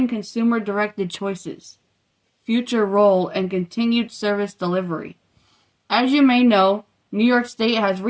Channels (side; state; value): both; identical; correlation 1.00